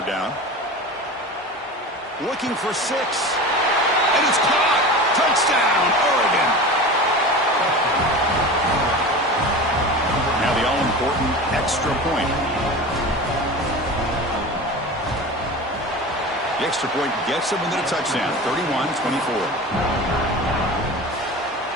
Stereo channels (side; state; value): both; normal; correlation 0.32